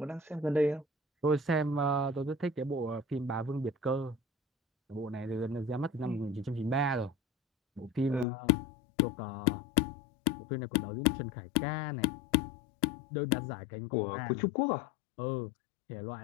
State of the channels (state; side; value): drops out; right; at 8.2 s